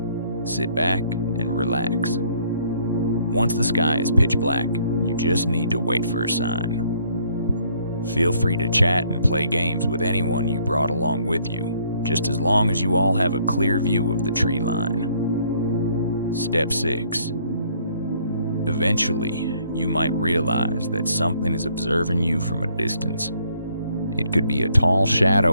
Sit back and relax. Once the sky is pitch black, you just need to wait for a sign. Feel free to chat and play games with anyone you brought along with you, just as long as you all have a clear view of the tree line. Step 6. Eventually, you might realize that something is observing you from a distance. It could be a tall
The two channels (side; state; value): both; inverted; correlation -0.65